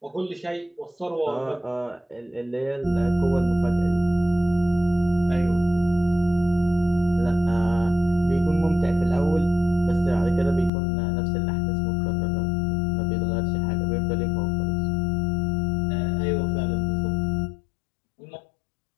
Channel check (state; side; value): drops out; right; at 10.7 s